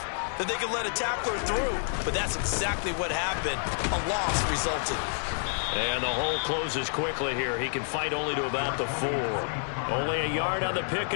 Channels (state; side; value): silent; right; 59 dB below the other